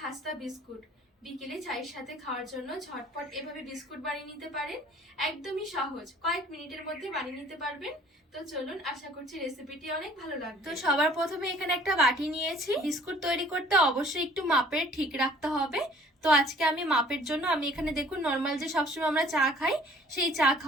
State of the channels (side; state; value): both; normal; correlation 0.53